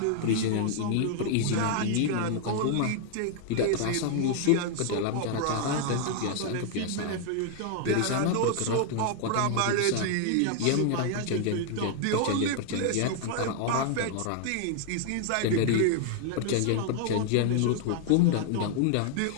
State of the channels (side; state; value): both; different; correlation 0.00